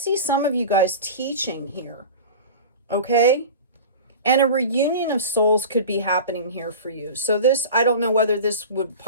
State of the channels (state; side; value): inverted; both; correlation -0.33